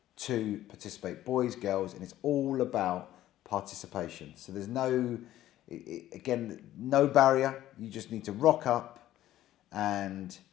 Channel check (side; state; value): right; quieter; 13.6 dB